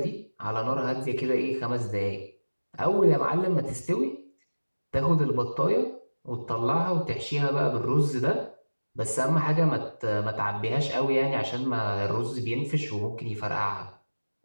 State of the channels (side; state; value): both; inverted; correlation -1.00